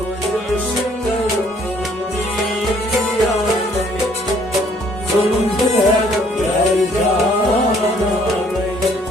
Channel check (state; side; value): normal; both; correlation 0.62